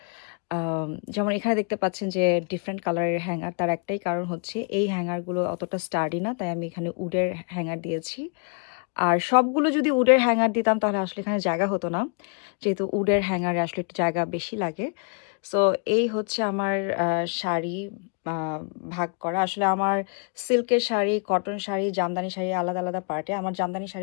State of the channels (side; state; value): right; quieter; 40.0 dB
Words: যেমন এখানে দেখতে পাচ্ছেন যে ডিফারেন্ট কালারের হ্যাঙ্গার, তার একটাই কারণ হচ্ছে এই হ্যাঙ্গারগুলো অতটা স্টাডি না, তাই আমি এখানে উডের হ্যাঙ্গার দিয়েছি। আর সবগুলো যদি উডের হ্যাঙ্গার দিতাম তাহলে আসলে এখানে জায়গা হতো না, যেহেতু উডের হ্যাঙ্গারে আসলে একটু জায়গা বেশি লাগে। সো এই হচ্ছে আমার শাড়ি আহ, ভাগ করা। আসলে আমার সিল্কের শাড়ি, কটন শাড়ি, জামদানি শাড়ি আলাদা আলাদা পার্টে। আমার জামদানি